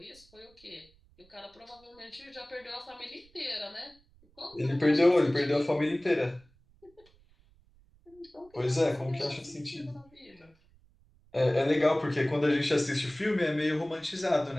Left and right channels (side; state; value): right; noise; rumble, 30 dB below the sound